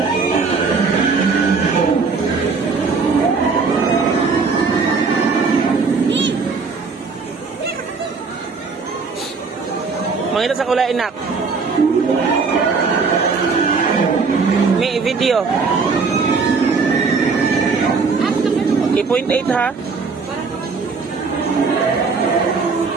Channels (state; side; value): quieter; left; 4.7 dB